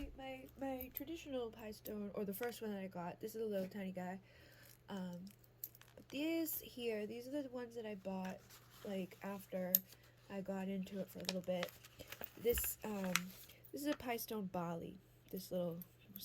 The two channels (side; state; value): both; identical; correlation 1.00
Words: my traditional pie stone, or the first one that I got. This is a little tiny guy. But these are the ones that I bought like after I got into it for a little bit. This is a pie stone Bali. This little